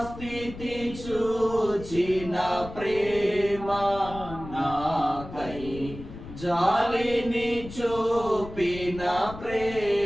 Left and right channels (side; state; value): left; noise; rumble, 13 dB below the sound